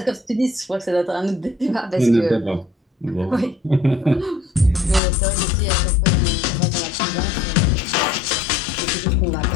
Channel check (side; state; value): right; drops out; at 5.0 s